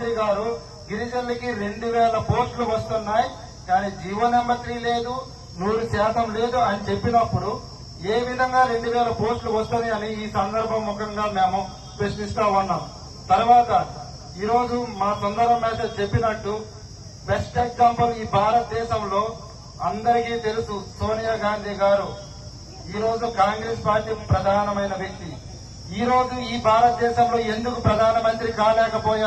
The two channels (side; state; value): both; identical; correlation 1.00